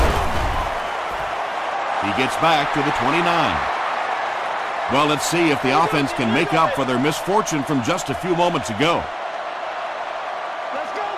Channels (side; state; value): both; identical; correlation 1.00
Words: He gets back to the 29. Well, let's see if the offense can make up for their misfortune from just a few moments ago.